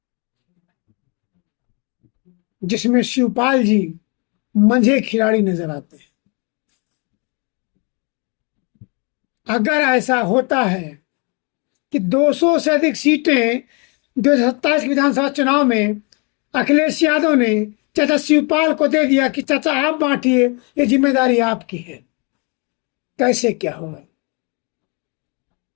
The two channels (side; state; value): right; quieter; 32.8 dB